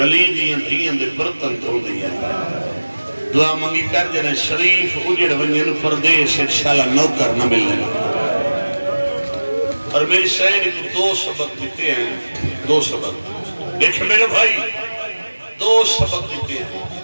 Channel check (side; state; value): both; inverted; correlation -1.00